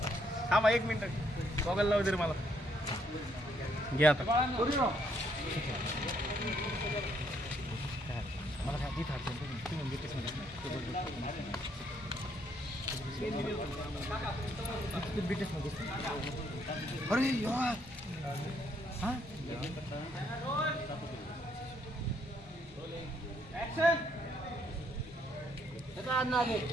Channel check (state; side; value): normal; both; correlation 0.71